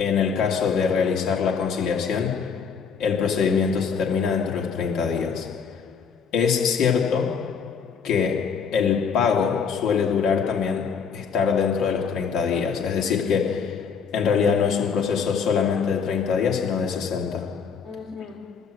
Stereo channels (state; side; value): quieter; right; 6.2 dB